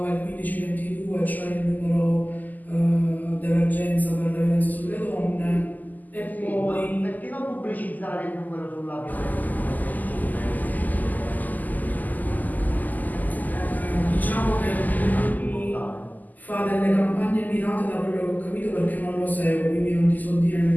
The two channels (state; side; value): late; right; 0.082 ms